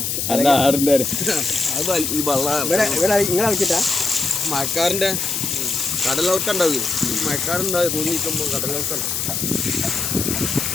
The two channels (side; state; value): left; noise; hiss, 1 dB below the sound